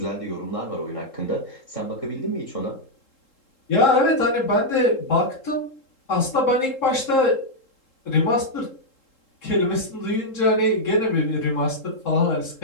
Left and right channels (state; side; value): late; right; 3.7 ms